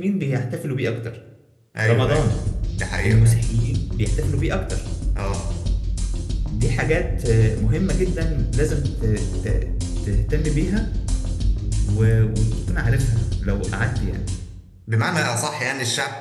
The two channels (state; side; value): identical; both; correlation 1.00